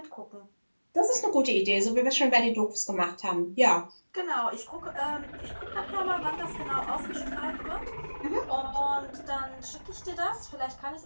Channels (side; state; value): both; inverted; correlation -1.00